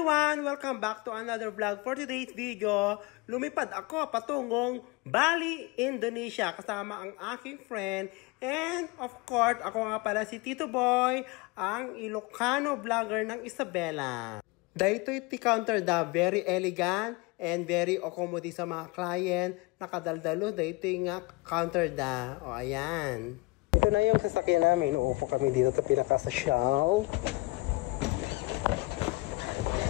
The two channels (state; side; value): quieter; right; 23.5 dB